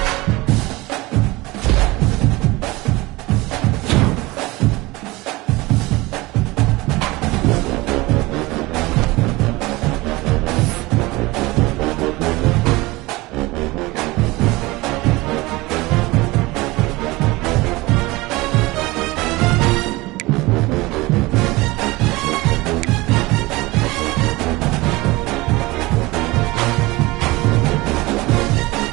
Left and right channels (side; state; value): left; quieter; 21.4 dB